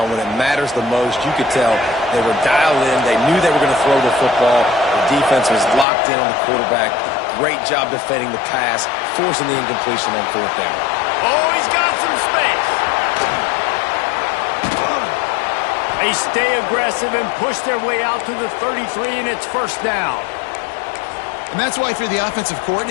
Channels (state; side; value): drops out; right; at 5.9 s